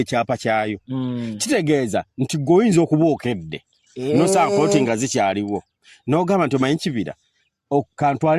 kyayo kitegeeza nti gweoyinza okuba okedde nosanga poloti nga zikyaliwo n'ogamba nti omanyi kibira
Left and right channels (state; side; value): identical; both; correlation 1.00